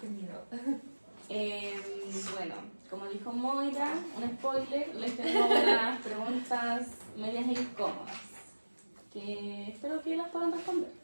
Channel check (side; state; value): both; inverted; correlation -1.00